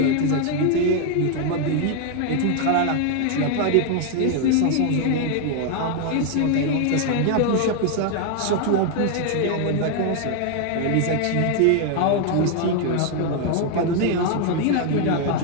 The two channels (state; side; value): different; both; correlation 0.01